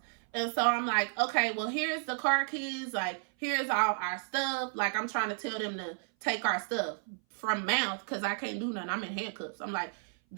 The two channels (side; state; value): left; silent; 56 dB below the other